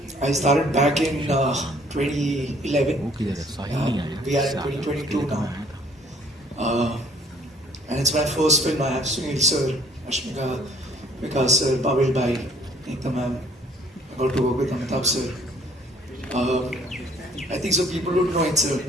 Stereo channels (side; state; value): both; normal; correlation 0.58